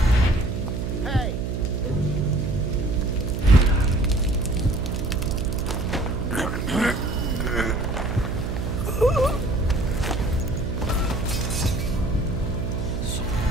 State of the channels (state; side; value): noise; right; hum, 3 dB below the sound